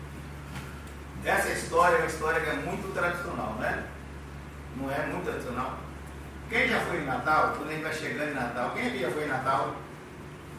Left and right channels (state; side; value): identical; both; correlation 1.00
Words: essa história é uma história que é muito tradicional, né? Não é muito tradicional? Quem já foi em Natal? Quando a gente vai chegando em Natal, quem aqui já foi em Natal?